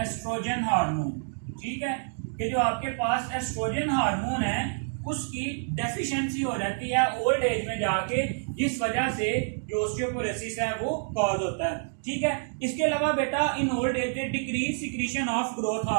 हार्मोन। ठीक है, कि जो आपके पास एस्ट्रोजन हार्मोन है उसकी डेफिशिएंसी हो जाती है ओल्ड एज में जाके, जिस वजह से जो ऑस्टियोपोरोसिस है वो कॉज होता है। ठीक है, इसके अलावा बेटा in old age decrease secretion of growth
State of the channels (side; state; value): left; silent; digital silence